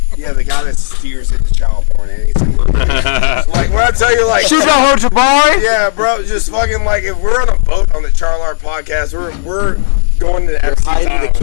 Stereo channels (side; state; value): right; silent; digital silence